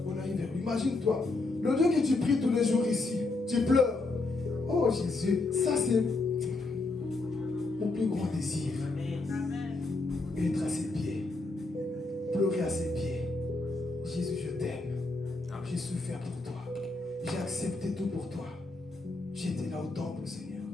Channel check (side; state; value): right; quieter; 3.3 dB